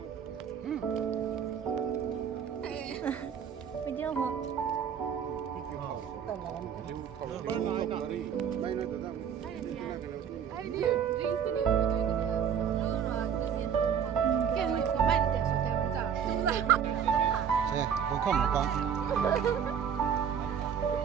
Bây giờ hả? Bên này nọ đi. Đây nó tự Ai đi, jeans cái này có thể rồi cứ diệt. Cái này có bạn để số theo cũng giả. Đúng rồi. Thế, không không một con.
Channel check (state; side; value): quieter; left; 7.9 dB